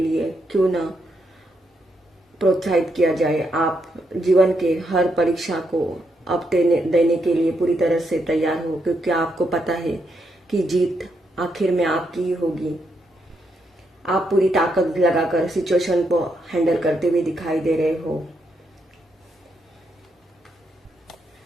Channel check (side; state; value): both; normal; correlation 0.79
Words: क्यों ना प्रोत्साहित किया जाए, आप जीवन के हर परीक्षा को अब देने के लिए पूरी तरह से तैयार हो, क्योंकि आपको पता है कि जीत आखिर में आपकी ही होगी। आप पूरी ताकत लगाकर सिचुएशन को हैंडल करते हुए दिखाई दे रहे हो।